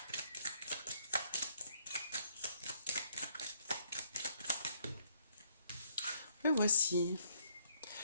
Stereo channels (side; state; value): both; inverted; correlation -0.69